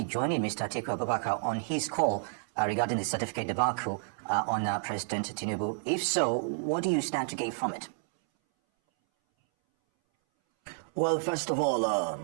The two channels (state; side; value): silent; left; 58 dB below the other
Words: joining Mr. Atiku Abubakar on his call regarding the certificate debacle on President Tinubu? If so, what do you stand to gain from it? Well, first of all,